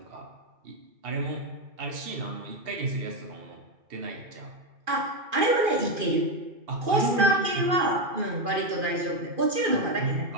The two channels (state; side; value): late; left; 2.4 ms